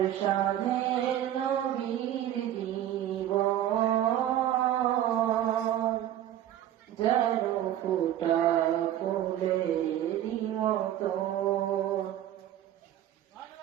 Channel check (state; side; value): quieter; left; 11.9 dB